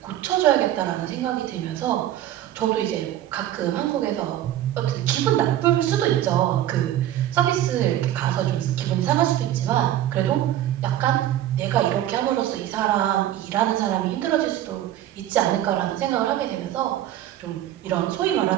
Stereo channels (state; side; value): quieter; left; 12.5 dB